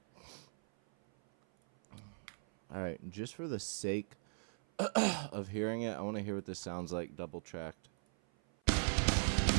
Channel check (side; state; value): left; silent; 52 dB below the other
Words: Alright, just for the sake of hearing it, I want to hear what this sounds like double tracked.